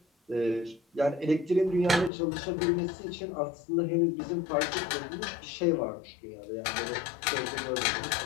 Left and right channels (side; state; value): right; drops out; at 2.1 s